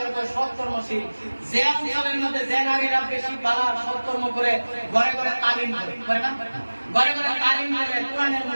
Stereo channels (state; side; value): inverted; both; correlation -1.00